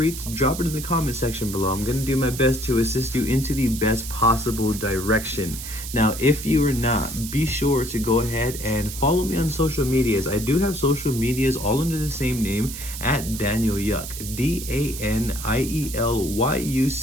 to drop it in the comment section below. I'm going to do my best to assist you into the best possible direction. Now, if you are not, be sure to go ahead and follow me on social medias. I do have social medias all under the same name, at Daniel Yuck, DANIELYUCK.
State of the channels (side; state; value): right; noise; hiss, 9 dB below the sound